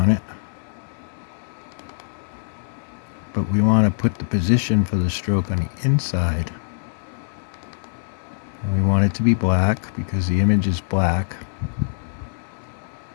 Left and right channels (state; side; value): silent; right; digital silence